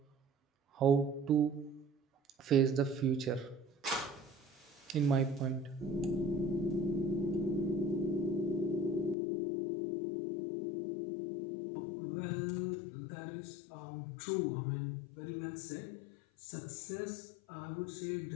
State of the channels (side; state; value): right; drops out; at 9.2 s